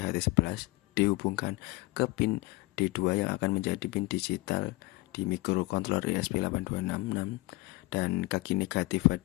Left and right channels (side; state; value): right; quieter; 22.1 dB